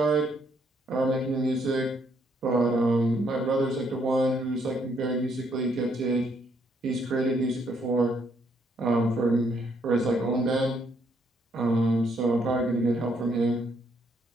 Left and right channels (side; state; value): both; normal; correlation 0.71